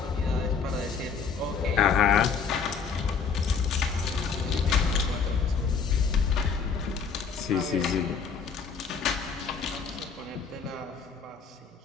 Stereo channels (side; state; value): right; quieter; 5.8 dB